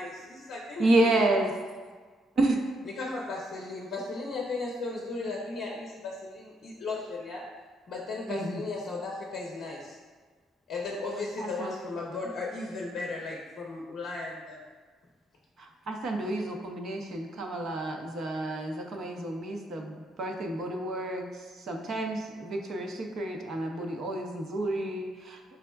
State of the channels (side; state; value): both; normal; correlation 0.74